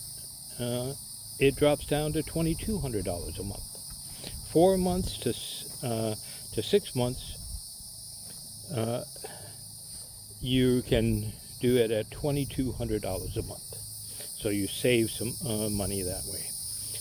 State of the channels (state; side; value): identical; both; correlation 1.00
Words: it drops down to $2,200 a month. 4 months to 6 months, you can do it at $2,200 a month. So you save some money that way.